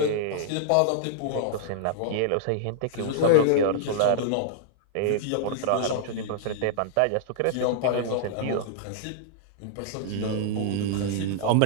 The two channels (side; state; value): both; different; correlation -0.01